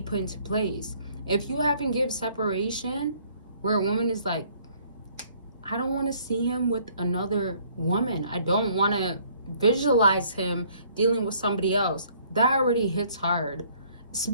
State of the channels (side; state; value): both; inverted; correlation -0.61